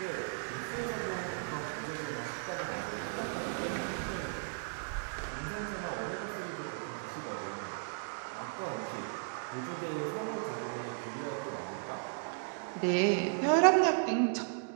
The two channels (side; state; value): left; silent; digital silence